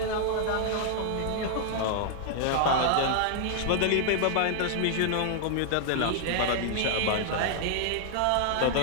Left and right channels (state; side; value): different; both; correlation -0.01